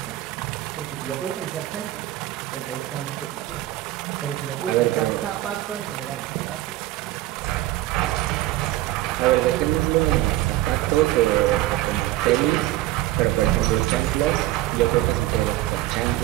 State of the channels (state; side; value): quieter; left; 15.9 dB